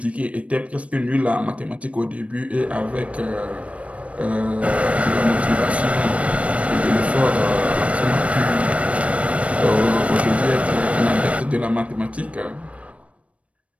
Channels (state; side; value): late; left; 0.064 ms